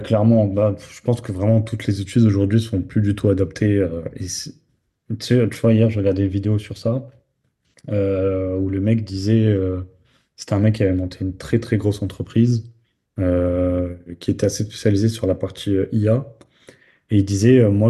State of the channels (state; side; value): identical; both; correlation 1.00